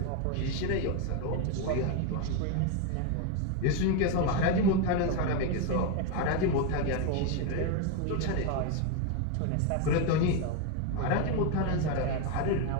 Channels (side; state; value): both; different; correlation 0.02